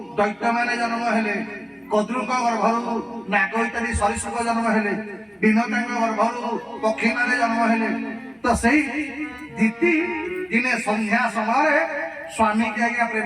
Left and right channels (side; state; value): both; identical; correlation 1.00